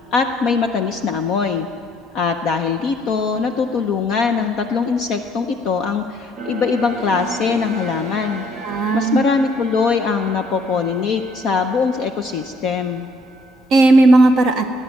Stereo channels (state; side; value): normal; both; correlation 0.65